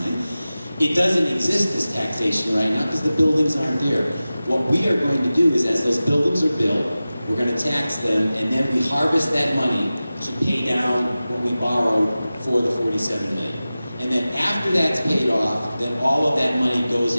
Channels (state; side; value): inverted; both; correlation -0.96